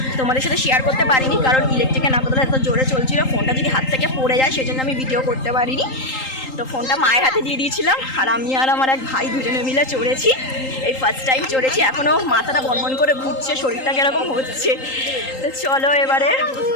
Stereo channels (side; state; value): right; late; 3.8 ms